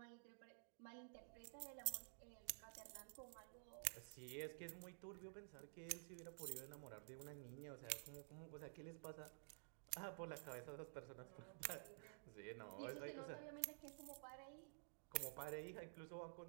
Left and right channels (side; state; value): left; silent; digital silence